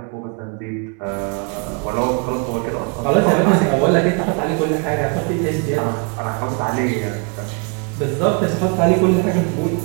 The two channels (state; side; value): quieter; left; 35.0 dB